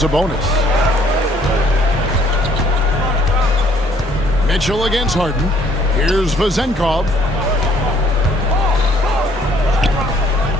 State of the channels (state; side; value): normal; both; correlation 0.62